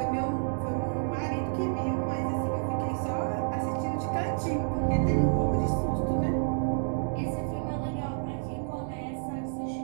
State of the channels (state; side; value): silent; left; digital silence